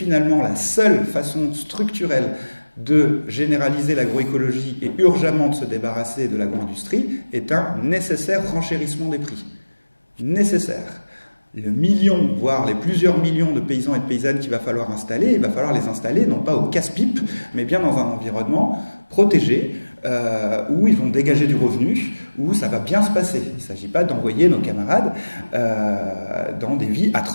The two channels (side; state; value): both; inverted; correlation -1.00